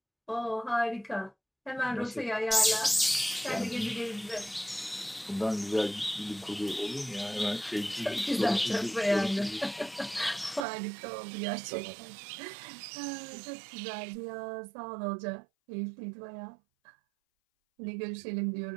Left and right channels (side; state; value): left; drops out; at 10.7 s